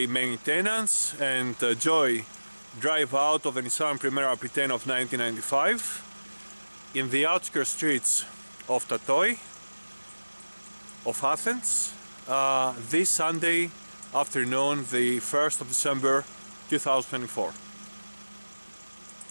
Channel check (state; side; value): inverted; both; correlation -1.00